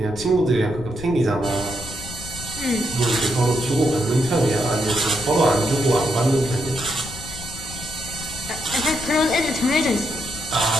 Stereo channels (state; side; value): noise; left; rumble, 13 dB below the sound